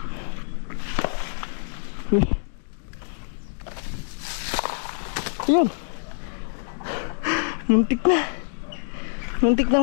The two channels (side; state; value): right; silent; digital silence